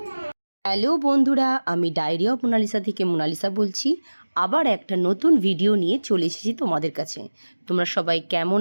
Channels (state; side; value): inverted; both; correlation -1.00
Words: Hello বন্ধুরা, আমি ডায়েরি অফ মোনালিসা থেকে মোনালিসা বলছি। আবার একটা নতুন ভিডিও নিয়ে চলে এসেছি তোমাদের কাছে। তোমরা সবাই কেমন